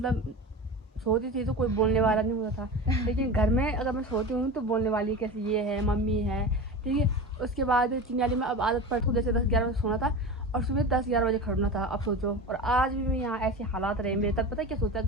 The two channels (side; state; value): both; normal; correlation 0.29